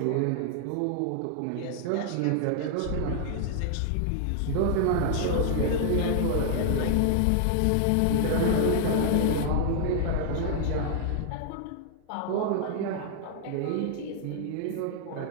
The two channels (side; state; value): both; different; correlation -0.01